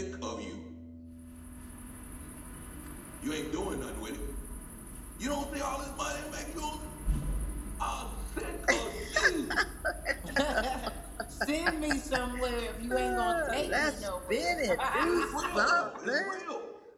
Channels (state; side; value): identical; both; correlation 1.00